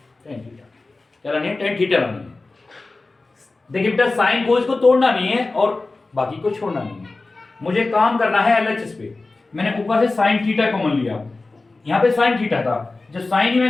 tan थीटा, क्या लानी है, tan थीटा लानी है। देखिए बेटा sin cos को तोड़ना नहीं है और बाकी को छोड़ना नहीं है, मुझे काम करना है LHS पे। मैंने ऊपर से sin थीटा कॉमन लिया, यहाँ पे sin थीटा था, जब sin ही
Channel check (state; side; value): quieter; right; 3.4 dB